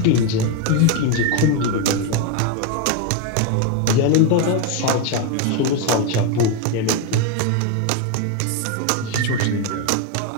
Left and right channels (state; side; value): different; both; correlation 0.02